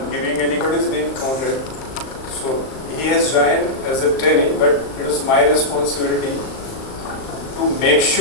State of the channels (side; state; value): right; late; 38 ms